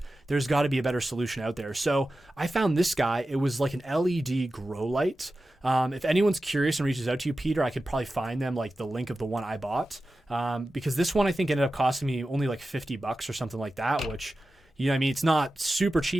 There's got to be a better solution out there. So I found this guy. It was like an LED grow light. If anyone's curious and reaches out to you, Peter, I could probably find them, like the link of the one I bought. Because this one I think ended up costing me only like $50 or something like that, which, You know what I mean? It's not super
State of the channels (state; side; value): normal; both; correlation 0.94